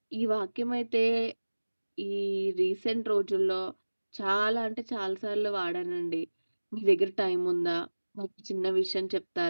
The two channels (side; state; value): both; inverted; correlation -1.00